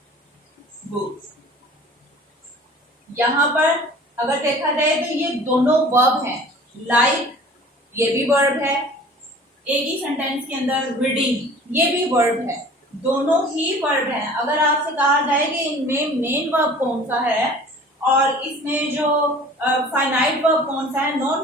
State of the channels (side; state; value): both; normal; correlation 0.46